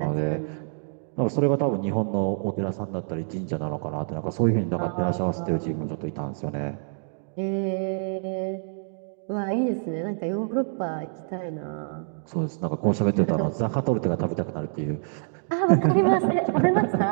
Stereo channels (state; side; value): silent; left; digital silence